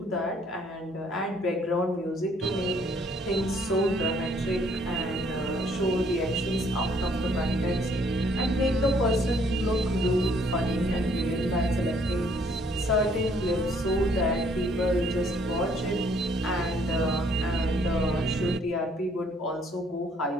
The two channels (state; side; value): normal; both; correlation 0.64